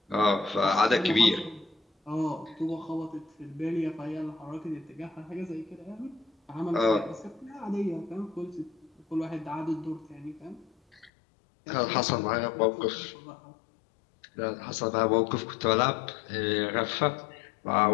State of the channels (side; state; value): right; drops out; at 11.1 s